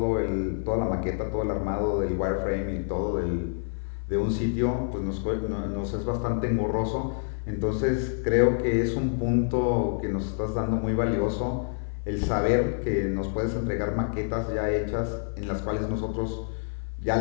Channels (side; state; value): right; silent; 58 dB below the other